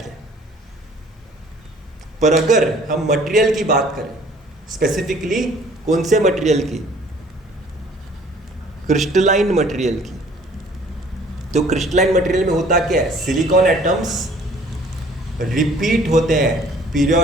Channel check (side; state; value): both; normal; correlation 0.55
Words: है। पर अगर हम मटेरियल की बात करें, स्पेसिफिकली कौन से मटेरियल की? क्रिस्टलाइन मटेरियल की। तो क्रिस्टलाइन मटेरियल में होता क्या है? सिलिकॉन एटम्स रिपीट होते हैं